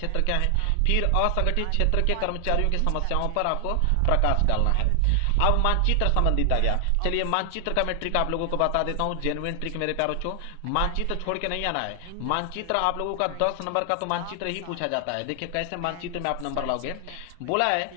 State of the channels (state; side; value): different; both; correlation 0.00